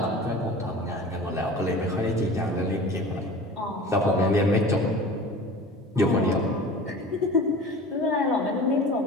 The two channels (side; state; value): both; normal; correlation 0.38